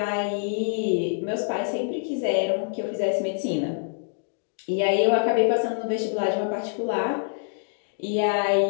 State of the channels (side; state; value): right; silent; digital silence